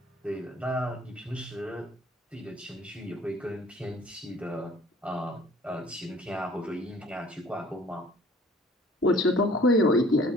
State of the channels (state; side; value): normal; both; correlation 0.52